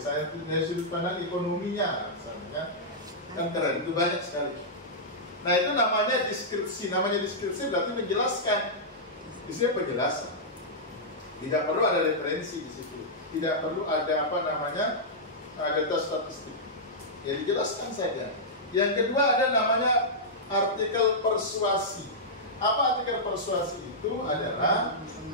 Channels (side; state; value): both; normal; correlation -0.11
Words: dari sudut pandang ekonominya, misalnya, kan keren, itu banyak sekali. Nah, itu namanya deskripsi. Namanya deskripsi berarti menjelaskan. Isinya penjelasan. Tidak perlu ada referensi di situ. Tidak perlu ada data statistik. Ya, dijelaskan saja. Yang kedua ada namanya artikel persuasi. Apa artikel persuasi itu? Adalah